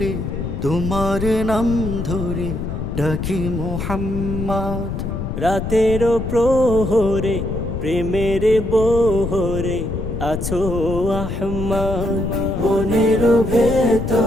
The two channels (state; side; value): noise; left; rumble, 4 dB below the sound